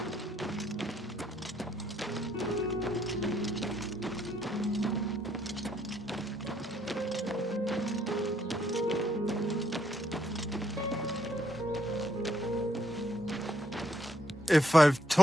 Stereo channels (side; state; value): both; normal; correlation 0.72